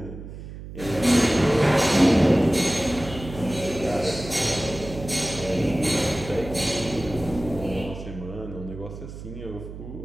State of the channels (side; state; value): right; noise; hum, 12 dB below the sound